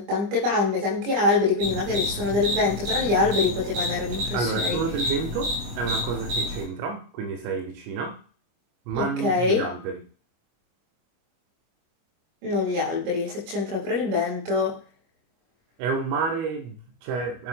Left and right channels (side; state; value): left; late; 25 ms